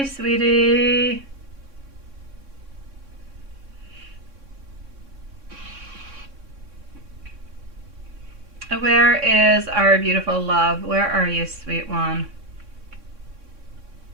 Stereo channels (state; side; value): late; left; 3.6 ms